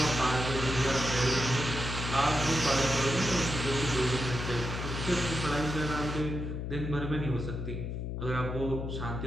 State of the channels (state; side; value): noise; left; hum, 4 dB below the sound